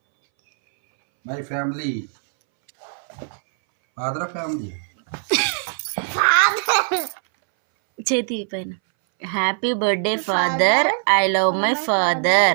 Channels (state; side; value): silent; left; 63 dB below the other